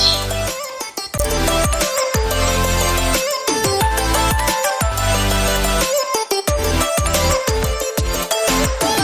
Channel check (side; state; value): both; identical; correlation 1.00